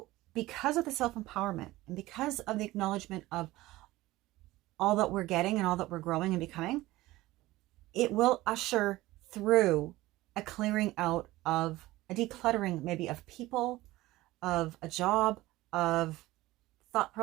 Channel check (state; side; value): quieter; left; 18.0 dB